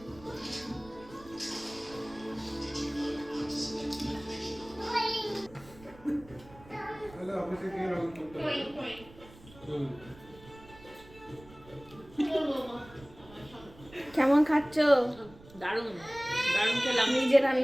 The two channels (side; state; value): right; noise; rumble, 21 dB below the sound